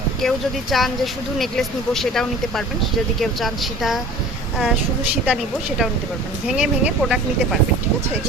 কেউ যদি চান যে শুধু নেকলেস নিব সেটাও নিতে পারবেন, যদি কেউ চান সীতা শুধু সীতা নিব সেটাও নিতে পারবেন, ভেঙে ভেঙে প্রোডাক্ট নিতে পারবেন, ঠিক আছে।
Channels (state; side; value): normal; both; correlation 0.44